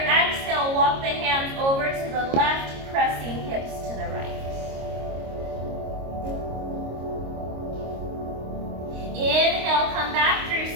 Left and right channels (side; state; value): left; late; 26 ms